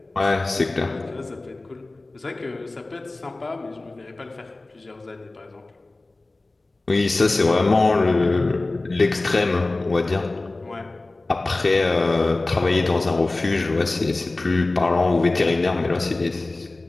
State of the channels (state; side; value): quieter; right; 3.0 dB